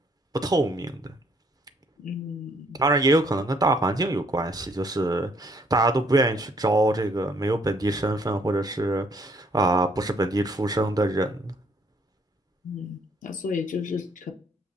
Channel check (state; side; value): normal; both; correlation 0.65